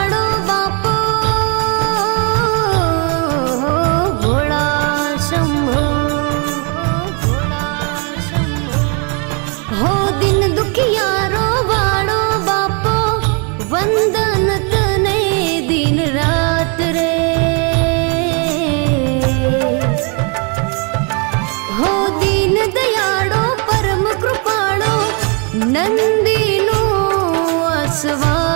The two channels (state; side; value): quieter; left; 35.8 dB